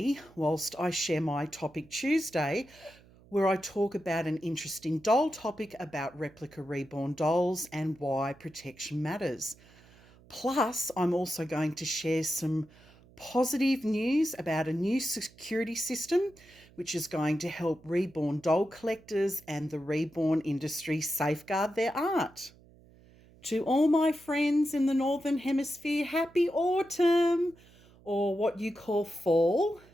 whilst I share my Topic Tuesday, where I talk about an interesting doll topic about replica reborn dolls and why protection matters. Plus, I'm also going to share some positive news about a new security system which is going to help reborn doll collectors and the reborn industry safeguard their art. To all my friends in the Northern Hemisphere, happy autumn, or what you call fall.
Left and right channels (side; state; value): right; noise; hum, 26 dB below the sound